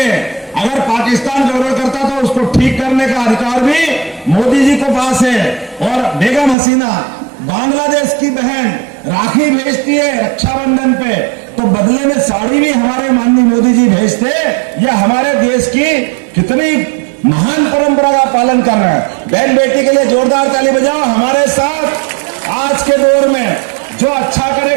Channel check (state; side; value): drops out; left; at 6.6 s